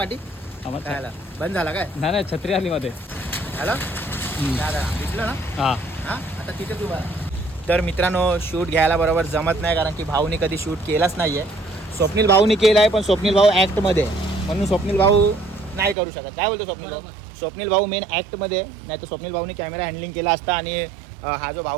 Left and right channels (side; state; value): left; drops out; at 16.0 s